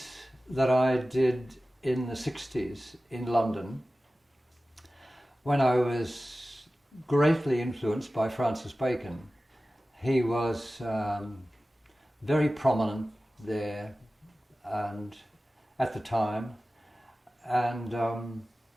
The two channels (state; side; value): normal; both; correlation 0.96